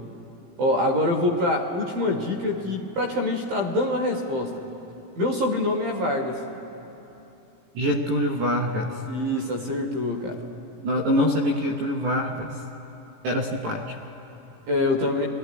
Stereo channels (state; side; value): late; left; 17 ms